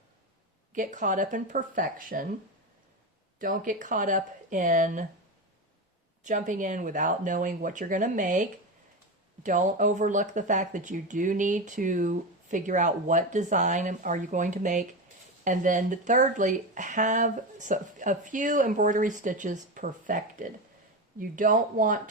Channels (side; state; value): both; normal; correlation 0.18